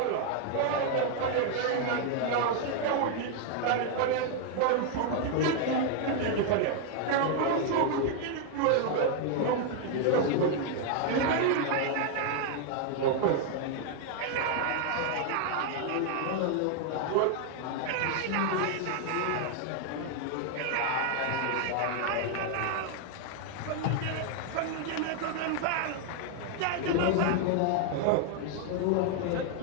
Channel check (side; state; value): both; different; correlation 0.00